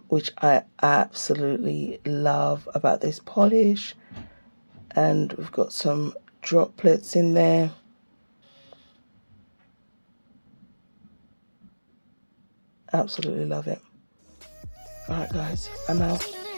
which I absolutely love about this polish. And we've got some droplets in there. Absolutely love it. All right, guys, I'm out.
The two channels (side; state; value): both; inverted; correlation -1.00